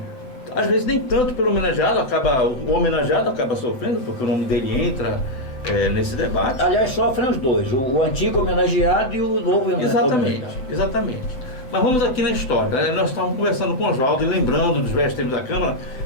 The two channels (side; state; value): right; late; 7.8 ms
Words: Às vezes nem tanto pelo homenageado, o homenageado acaba sofrendo, porque o nome dele entra nesse debate. Aliás, sofrem os dois, o antigo homenageado e o novo homenageado. Exatamente. Mas vamos aqui na história, né? Nós estávamos conversando com o Oswaldo e lembrando dos velhos tempos da Câmara,